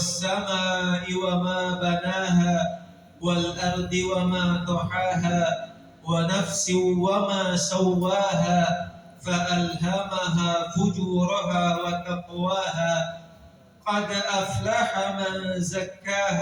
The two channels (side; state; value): both; identical; correlation 1.00